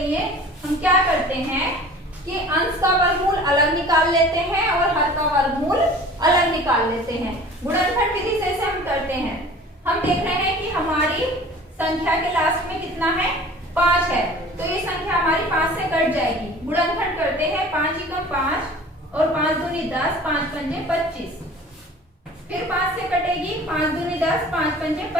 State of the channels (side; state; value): both; normal; correlation 0.44